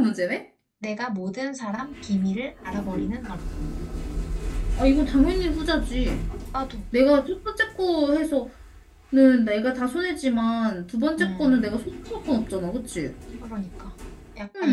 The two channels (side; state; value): both; identical; correlation 1.00